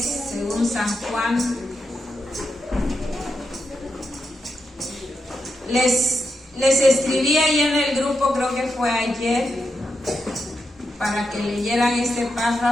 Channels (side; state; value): both; normal; correlation 0.86